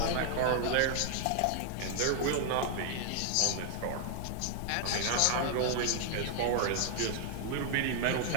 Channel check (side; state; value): both; different; correlation 0.00